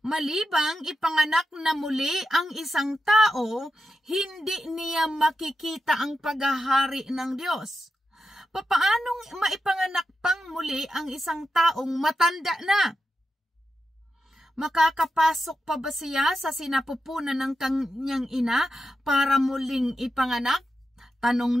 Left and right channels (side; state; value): both; normal; correlation 0.89